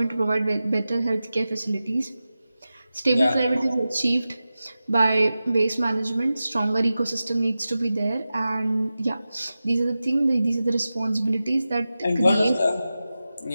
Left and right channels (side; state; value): both; inverted; correlation -0.94